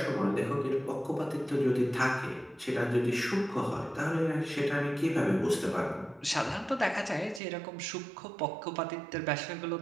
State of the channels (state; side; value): drops out; left; at 7.4 s